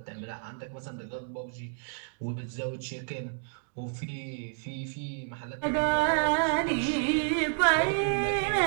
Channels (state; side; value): silent; left; digital silence